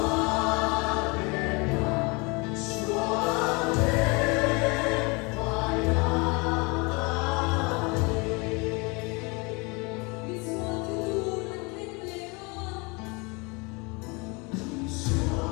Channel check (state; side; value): quieter; right; 28.6 dB